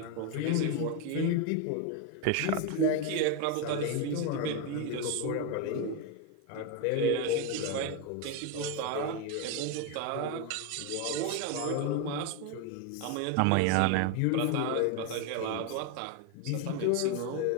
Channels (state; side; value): different; both; correlation 0.02